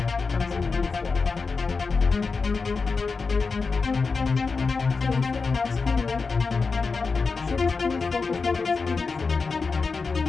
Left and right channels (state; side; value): quieter; right; 4.5 dB